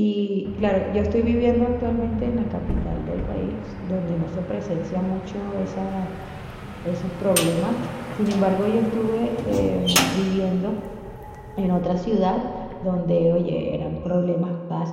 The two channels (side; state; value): both; identical; correlation 1.00